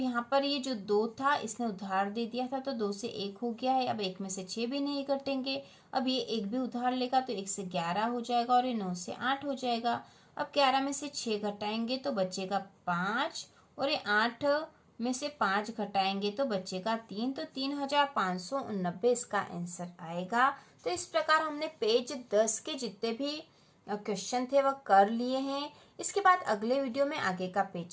पर ये जो 2 था इसने उधार दे दिया था तो 2 से 1 हो गया है। अब 1 में से 6 भी नहीं घटेंगे। अब ये 1 भी उधार लेगा तो 1 से 11 हो जाएगा और ये 9 से 8 हो जाएगा। अब 11 में से 6 घटाएंगे तो बचेगा 5 और ये 8 में से 5 घटाएंगे तो बचेगा 3, तो 3589 इसका आंसर आएगा। तो इस प्रकार हमने पेज 10 के जितने भी क्वेश्चन थे वह कर लिए हैं। इसके बाद अगले वीडियो में आगे का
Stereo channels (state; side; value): identical; both; correlation 1.00